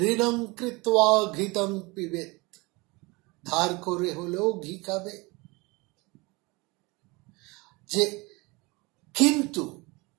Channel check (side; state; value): left; quieter; 25.2 dB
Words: ঋণং কৃত্বা ঘৃতং পিবেত, ধার করে হলেও ঘি খাবে। যে কিন্তু